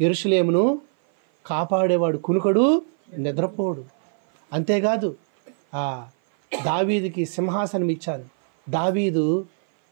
కాపాడేవాడు కునుకడు నిద్రపోడు. అంతేకాదు దావీదుకి సింహాసనం ఇచ్చాను. దావీదు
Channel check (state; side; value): silent; left; 57 dB below the other